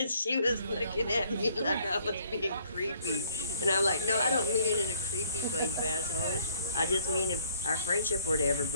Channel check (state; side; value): inverted; both; correlation -0.63